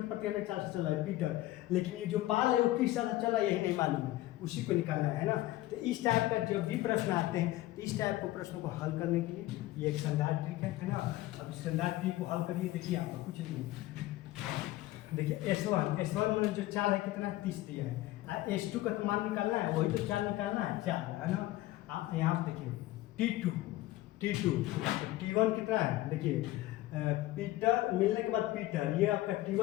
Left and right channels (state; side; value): quieter; right; 16.5 dB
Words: प्रति घंटे चाल से चल रहा है पीटर, लेकिन ये जो पाल है वो किस चाल से चल रहा है यही नहीं मालूम है, उसी को निकालना है ना। तो इस टाइप का जब भी प्रश्न आते हैं, इस टाइप को प्रश्नों को हल करने के लिए ये एक शानदार ट्रिक है ना। अब इस शानदार ट्रिक को हल करिए। देखिए आपको कुछ नहीं, देखिए S1 में जो चाल है कितना 30 दिया है, S2 का तो मान निकालना है, वही तो चाल निकालना है, चाल है ना। आप यहाँ पर देखिए T2 T1 कितना है, देखिए पीटर मिलने के बाद पीटर ये आपका